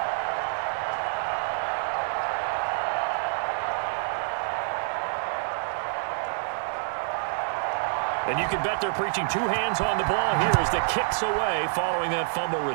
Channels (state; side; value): silent; left; digital silence